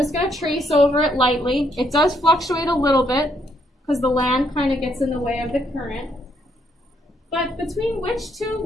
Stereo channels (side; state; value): both; normal; correlation 0.73